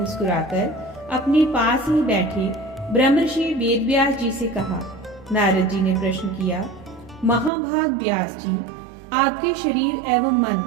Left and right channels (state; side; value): drops out; left; at 7.5 s